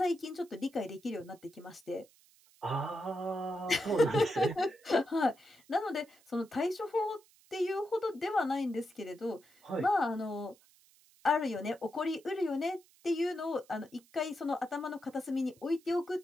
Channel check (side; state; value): right; noise; hiss, 29 dB below the sound